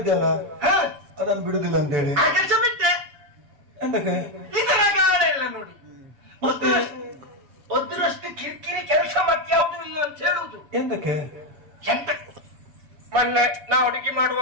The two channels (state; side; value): late; left; 7.4 ms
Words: ಅದನ್ನು ಬಿಡುದಿಲ್ಲ ಅಂತ ಹೇಳಿ ಕೆಲಸ ಬಿಟ್ಟೆ. ಎಂತಕ್ಕೆ ಇದು ರಗಾಳ ಇಲ್ಲ ನೋಡಿ. ಒದ್ರಷ್ಟು ಕಿರಿಕಿರಿ ಕೆಲಸ ಮತ್ಯಾವುದು ಇಲ್ಲ ಅಂತ ಹೇಳುವುದು. ಎಂತಕ್ಕೆ? ಎಂತ ಮೊನ್ನೆ ನಾ ಅಡುಗೆ